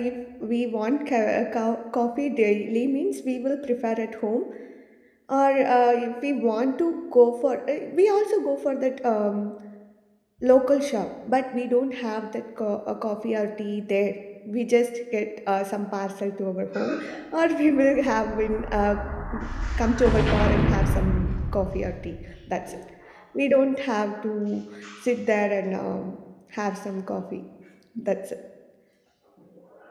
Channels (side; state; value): both; identical; correlation 1.00